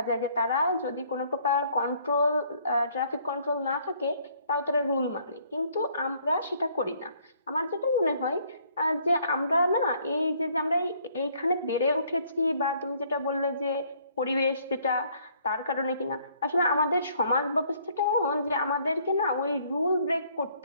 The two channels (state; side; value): inverted; both; correlation -0.63